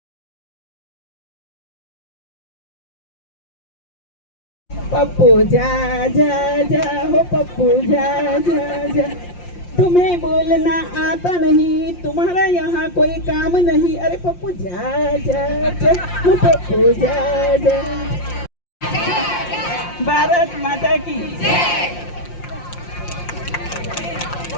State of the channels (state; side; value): late; right; 5.7 ms